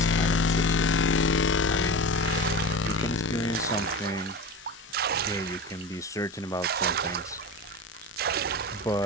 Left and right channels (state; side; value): normal; both; correlation 0.29